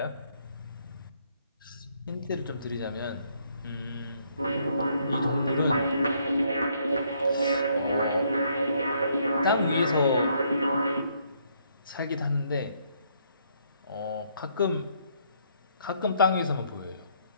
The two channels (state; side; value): inverted; both; correlation -0.69